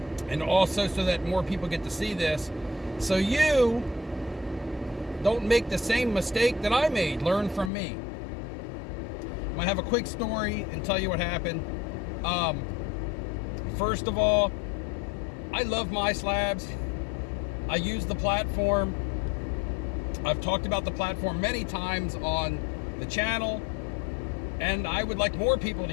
and also so that more people get to see this, so you don't make the same mistake that I made. Learn from me. I'm going to have a quick story and tell you what happened. First of all, I love MySlabs. I use the platform. I've talked about the platform many times on the channel, and I would like more people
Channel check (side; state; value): right; drops out; at 7.7 s